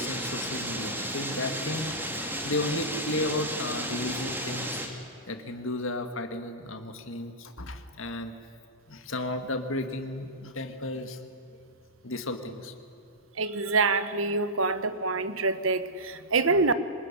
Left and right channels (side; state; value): both; normal; correlation -0.13